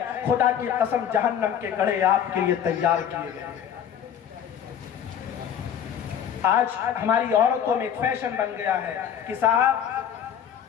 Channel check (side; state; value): right; quieter; 9.0 dB